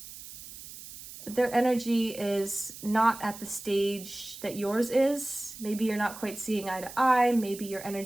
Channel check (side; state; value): right; noise; hiss, 14 dB below the sound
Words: Their energy is not at the stage that yours is. Maybe you're not quite seeing eye to eye. Maybe your